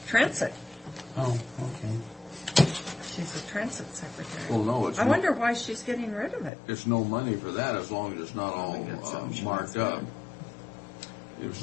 Transit. Oh, okay. She's a Transit secretary. Well, no, it's I wonder why she's getting rid of it. it's no money for that as long as it's not all we got something marked up. If it's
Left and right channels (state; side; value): drops out; right; at 6.5 s